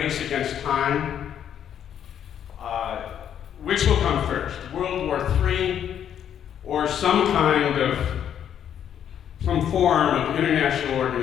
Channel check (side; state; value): right; quieter; 9.4 dB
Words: against time. Which will come first, World War III or some form of international